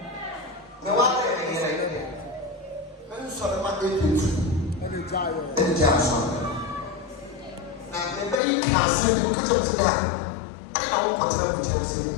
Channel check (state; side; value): drops out; right; at 8.4 s